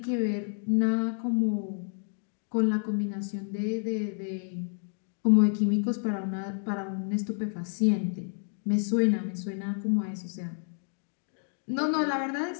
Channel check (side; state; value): right; silent; 58 dB below the other